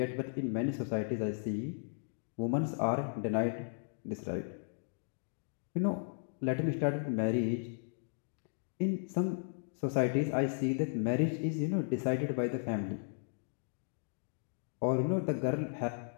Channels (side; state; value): right; silent; digital silence